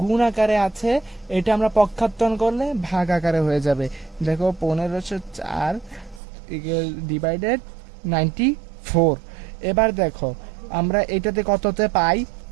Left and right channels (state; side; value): drops out; left; at 6.2 s